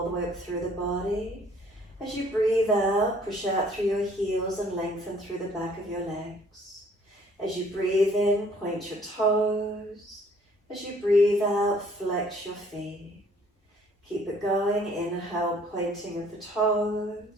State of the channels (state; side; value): normal; both; correlation 0.59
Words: the way up through the body. As you breathe out, push out through your heels and lengthen through the back of your legs. As you breathe in, point your toes. As you breathe out, flex your feet. Keep it going. Inhale, pointing of the